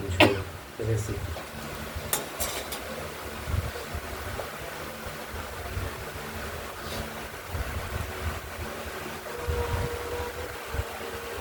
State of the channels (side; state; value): both; identical; correlation 1.00